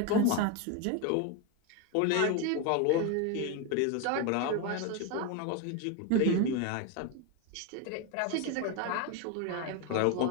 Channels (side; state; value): both; different; correlation 0.02